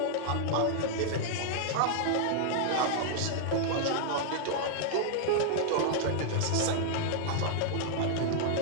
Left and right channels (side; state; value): both; different; correlation 0.00